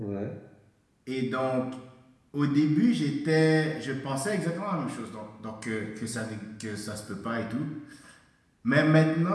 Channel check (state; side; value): identical; both; correlation 1.00